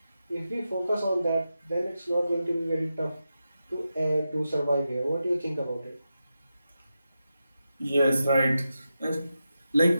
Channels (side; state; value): both; inverted; correlation -0.89